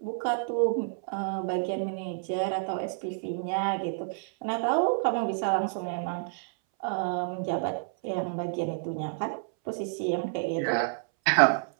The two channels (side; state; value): left; silent; 58 dB below the other